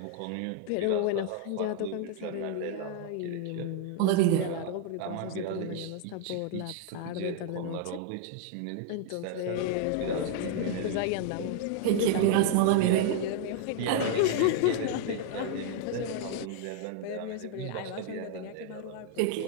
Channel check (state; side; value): different; both; correlation 0.00